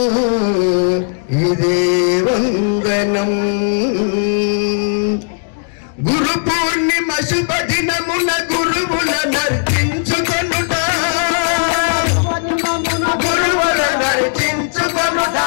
ఇదే వందనం. గురు పూర్ణిమ శుభ దినమున గురువుల నర్చించుకొనుట గురువుల నర్చించుకొనుట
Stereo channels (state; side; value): silent; right; digital silence